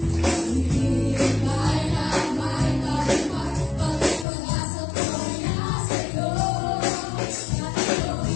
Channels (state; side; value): drops out; right; at 4.2 s